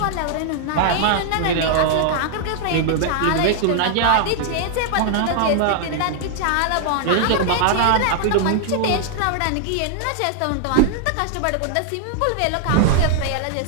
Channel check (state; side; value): different; both; correlation -0.01